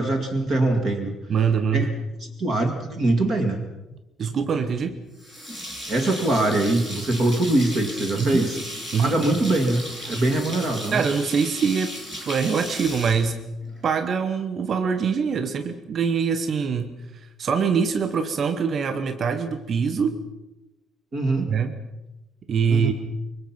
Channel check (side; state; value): left; quieter; 3.5 dB